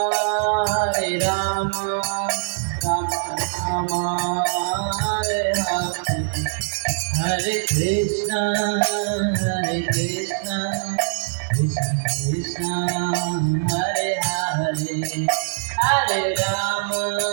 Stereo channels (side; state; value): left; silent; digital silence